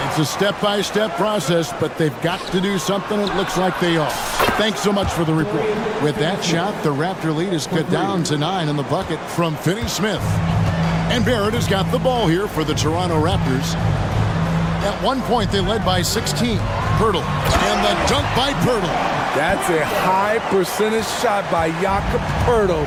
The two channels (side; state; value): both; identical; correlation 1.00